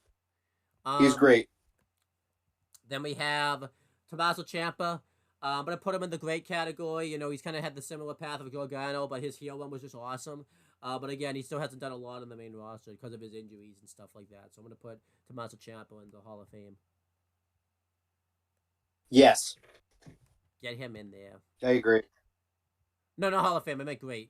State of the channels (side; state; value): both; identical; correlation 1.00